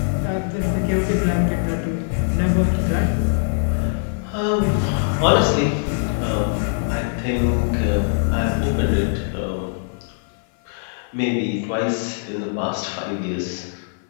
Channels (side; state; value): right; silent; 56 dB below the other